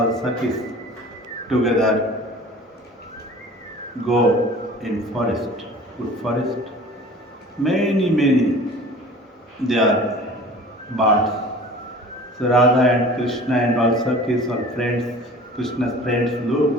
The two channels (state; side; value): normal; both; correlation 0.43